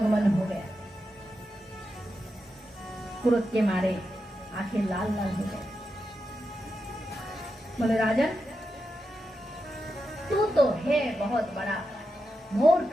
हो गया। क्रोध के मारे आंखें लाल लाल हो गए। बोले राजन, तू तो है बहुत बड़ा मूर्ख,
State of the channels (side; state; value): both; normal; correlation 0.88